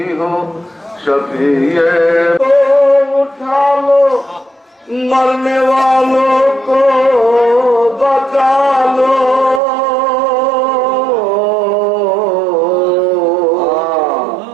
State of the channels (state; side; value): drops out; left; at 9.6 s